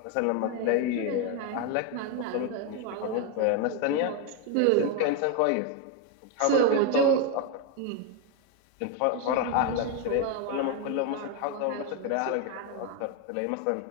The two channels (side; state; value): both; different; correlation 0.01